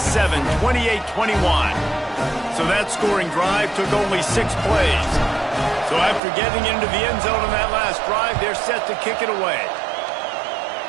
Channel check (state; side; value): drops out; left; at 6.2 s